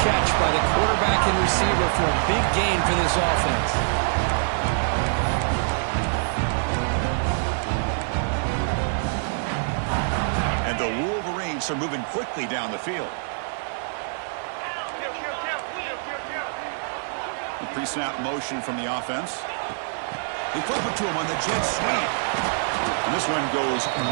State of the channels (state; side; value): silent; left; 62 dB below the other